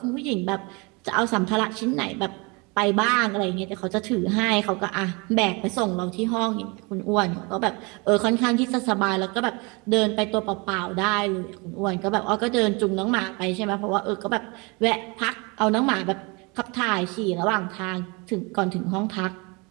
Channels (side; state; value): left; quieter; 29.0 dB